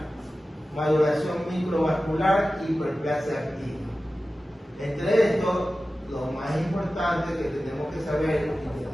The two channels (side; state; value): both; normal; correlation 0.95